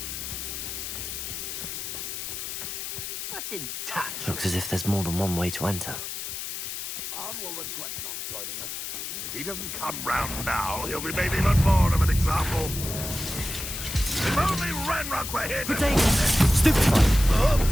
I didn't touch. Looks as if there's more than one way to enter. Arn will regret not joining us. If he doesn't come round now, he'll be made even more of an example. If only Ranrock were here to... Stupid!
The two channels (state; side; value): noise; left; hiss, 6 dB below the sound